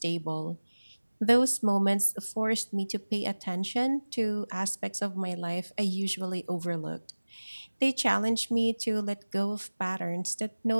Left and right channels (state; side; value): inverted; both; correlation -1.00